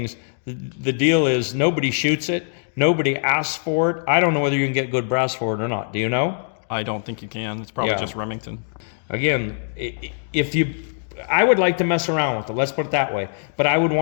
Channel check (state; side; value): silent; right; digital silence